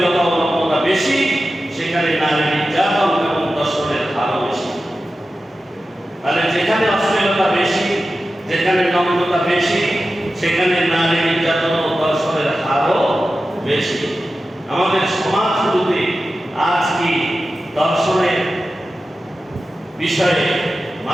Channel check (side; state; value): both; normal; correlation 0.93